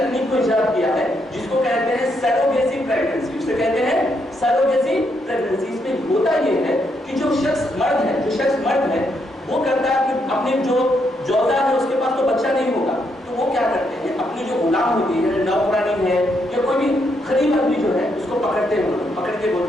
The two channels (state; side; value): normal; both; correlation 0.77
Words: کو ایجاد کیا ہے جس کو کہتے ہیں سیروگیسی پریگننسی. اسے کہتے ہیں سیروگیسی پریگننسی. اس میں ہوتا یہ ہے کہ جو شخص مرد ہے وہ کرتا ہے کہ اپنی جو جوزا ہے اس کے پاس تو بچہ نہیں ہوگا, تو وہ کیا کرتے ہیں, اپنی جو غلام ہوتی ہے, نوکرانی ہے یا کوئی بھی غریب آدمی جو ہے اس کو پکڑ کے